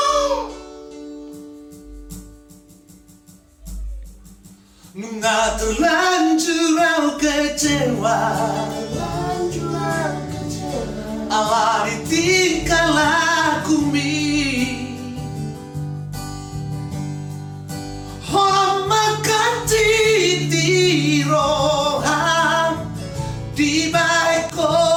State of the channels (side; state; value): both; identical; correlation 1.00